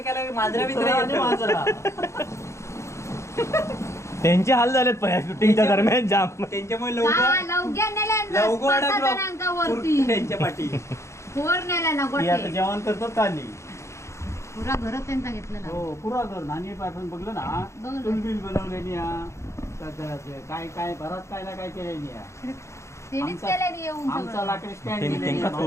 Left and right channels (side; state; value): right; late; 0.14 ms